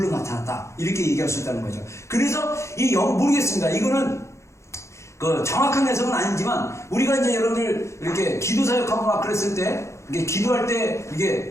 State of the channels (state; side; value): late; right; 0.14 ms